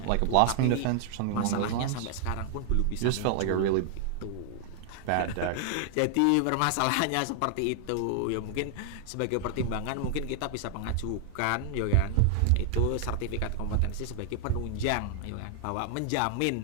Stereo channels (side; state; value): both; different; correlation -0.01